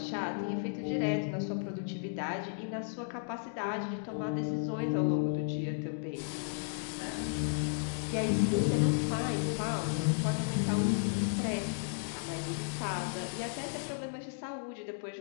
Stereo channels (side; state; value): right; silent; digital silence